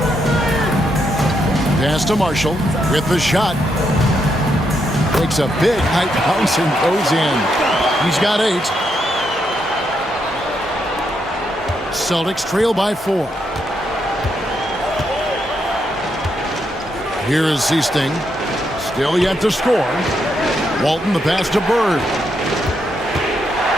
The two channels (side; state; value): both; normal; correlation 0.79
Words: Pass to Marshall with the shot. Takes a big high bounce and goes in. He's got 8. Celtics trail by 4. Here is Seasting. Still yet to score. Walton the pass to Bird.